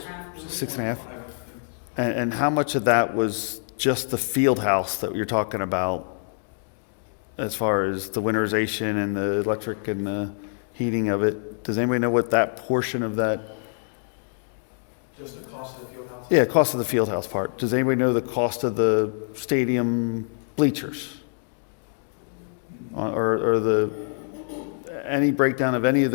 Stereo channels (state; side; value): silent; right; digital silence